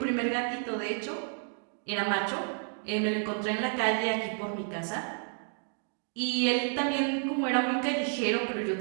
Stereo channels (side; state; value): left; silent; 56 dB below the other